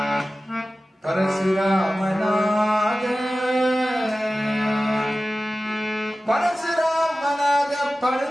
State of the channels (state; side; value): normal; both; correlation 0.96